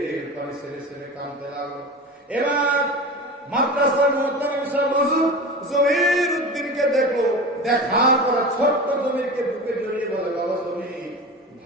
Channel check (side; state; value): both; normal; correlation 0.30